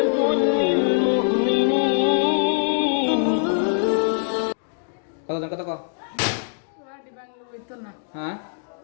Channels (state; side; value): silent; right; digital silence